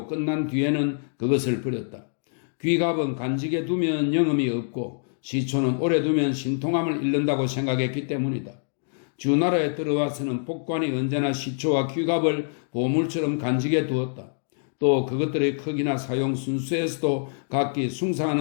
끝난 뒤에는 그것을 버렸다. 귀갑은 간직에 두면 영험이 없고 시초는 오래 두면 신통함을 잃는다고 생각했기 때문이다. 주나라에 들어와서는 복관이 언제나 시초와 귀갑을 보물처럼 간직해 두었다. 또 그것들의 크기나 사용 순수에서도 각기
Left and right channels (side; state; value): right; silent; digital silence